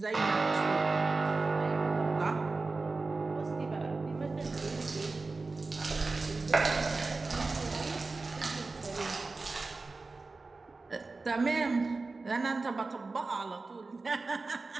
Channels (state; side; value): quieter; left; 3.7 dB